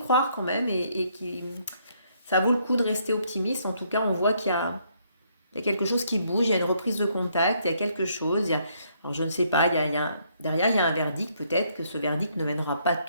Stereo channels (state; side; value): inverted; both; correlation -0.70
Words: quand même et que ça vaut le coup de rester optimiste. En tout cas, on voit il y a quelque chose qui bouge, il y a une reprise de contact, il y a quelque chose. Alors je ne sais pas, derrière, il y a un verdict. Peut-être que ce verdict ne mènera pas